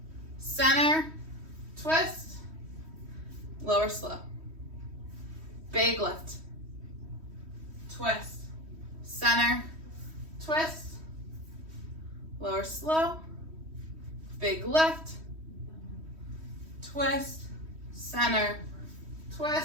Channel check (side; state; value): left; late; 3.1 ms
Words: center, twist, lower slow. Big lift. Twist, center, twist, lower slow. Big lift, twist, center,